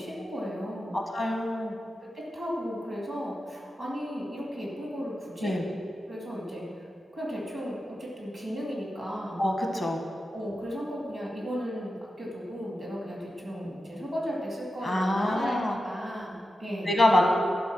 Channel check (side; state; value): both; normal; correlation 0.90